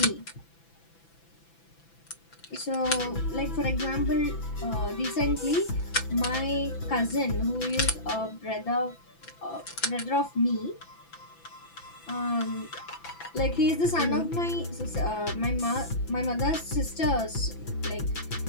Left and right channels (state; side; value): late; right; 6.0 ms